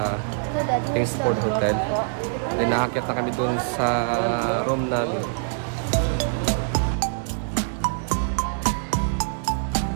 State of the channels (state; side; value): silent; left; 62 dB below the other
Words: Kingsport Hotel. Then, nakakyat na kami dun sa room namin.